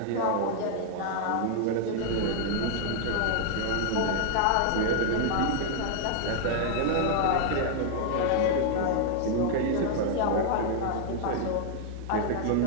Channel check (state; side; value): different; both; correlation 0.00